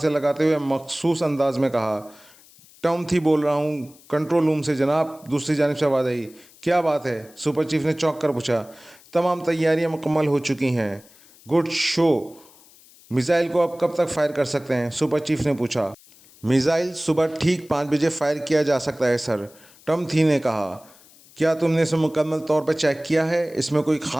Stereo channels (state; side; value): noise; left; hiss, 26 dB below the sound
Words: लगाते हुए मखसूस अंदाज में कहा। टॉम थी बोल रहा हूँ, कंट्रोल रूम से जनाब, दूसरी जानिब से आवाज़ आई। क्या बात है, सुपर चीफ ने चौंक कर पूछा। तमाम तैयारियां मुकम्मल हो चुकी हैं। Good show. मिसाइल को अब कब तक फायर कर सकते हैं, सुपर चीफ ने पूछा। मिसाइल सुबह ठीक 5 बजे फायर किया जा सकता है सर, टॉम थी ने कहा। क्या तुमने इसे मुकम्मल तौर पर चेक किया है? इसमें कोई